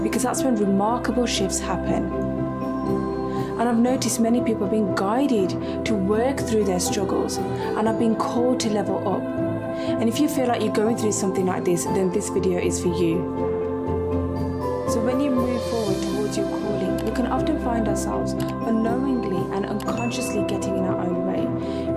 because that's when remarkable shifts happen. And I've noticed many people are being guided to work through their struggles and are being called to level up. And if you feel like you're going through something like this, then this video is for you. So when you move forward towards your calling, we can often find ourselves unknowingly and unconsciously getting in our own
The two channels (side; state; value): both; identical; correlation 1.00